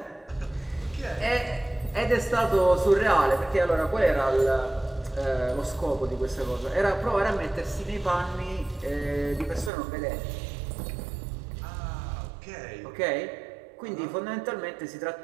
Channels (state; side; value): drops out; left; at 9.7 s